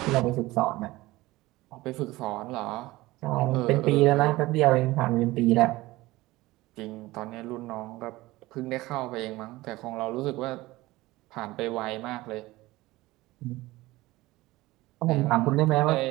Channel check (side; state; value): left; quieter; 19.1 dB